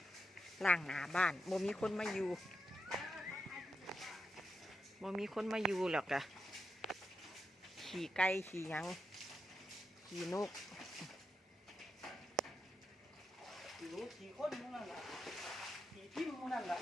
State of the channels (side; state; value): both; normal; correlation 0.86